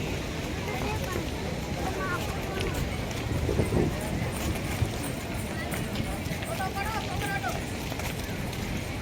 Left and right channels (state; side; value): identical; both; correlation 1.00